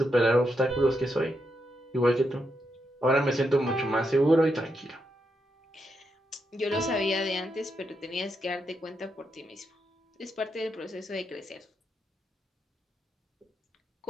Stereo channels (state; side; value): normal; both; correlation 0.82